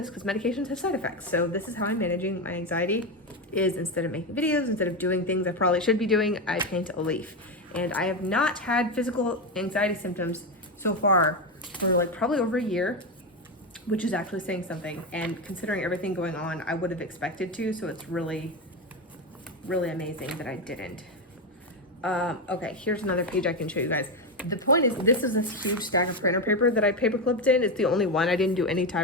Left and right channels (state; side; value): normal; both; correlation 0.12